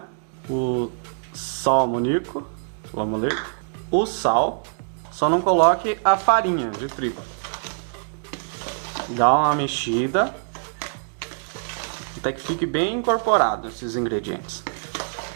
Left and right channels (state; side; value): silent; left; digital silence